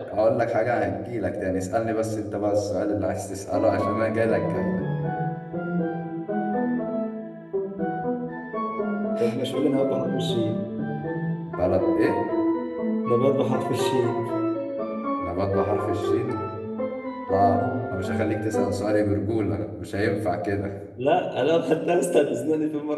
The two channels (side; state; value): both; identical; correlation 1.00